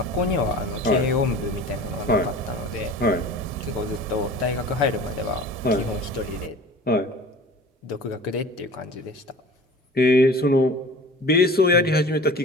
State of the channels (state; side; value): normal; both; correlation 0.41